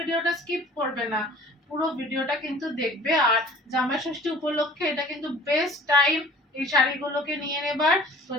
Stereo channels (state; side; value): normal; both; correlation 0.47